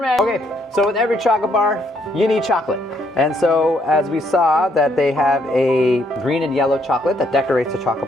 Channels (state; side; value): normal; both; correlation 0.71